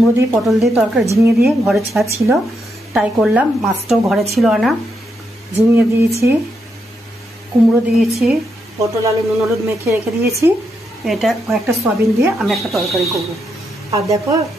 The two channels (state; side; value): normal; both; correlation 0.81